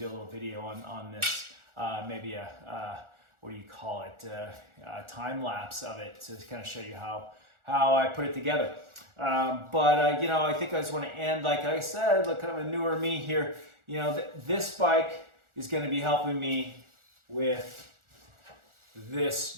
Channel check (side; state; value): left; late; 1.4 ms